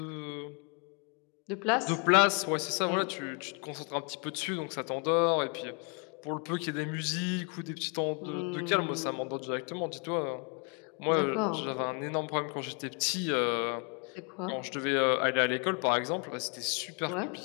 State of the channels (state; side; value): quieter; right; 36.2 dB